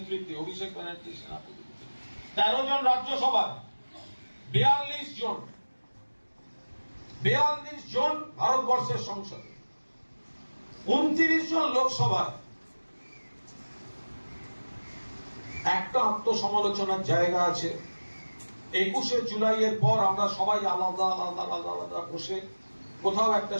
অভিষেক ব্যানার্জির সেনাপতি। 13 জন রাজ্যসভায়, 42 জন ভারতবর্ষের সংসদে, 29 জন লোকসভায়। একটা আত্মসমালোচনার জায়গা আছে। 21শে জুলাইয়ের পর আমরা সবাই আলাদা আলাদা আলাদা আলাদা বসে কোথাও একটা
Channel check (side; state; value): both; inverted; correlation -1.00